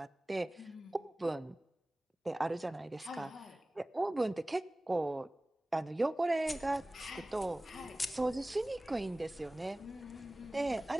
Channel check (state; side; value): normal; both; correlation 0.98